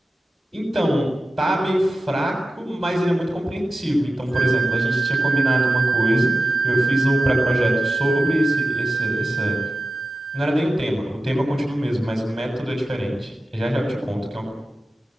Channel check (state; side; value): normal; both; correlation 0.93